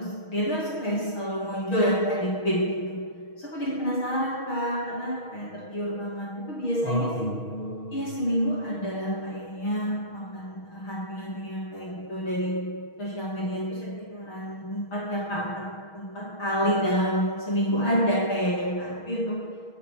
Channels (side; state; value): right; late; 6.3 ms